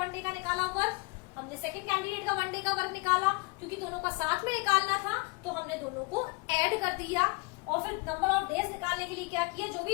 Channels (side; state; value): right; quieter; 27.4 dB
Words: डे का निकाला वर्क, हमने सेकंड कैंडिडेट का 1 डे का वर्क निकाला, क्योंकि दोनों का साथ में निकालना था तो हमने दोनों को ऐड कर दिया, और फिर नंबर ऑफ डेज निकालने के लिए क्या किया, जो भी